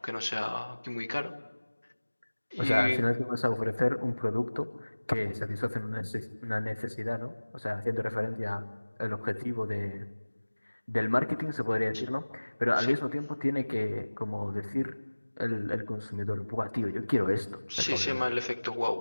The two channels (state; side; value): inverted; both; correlation -1.00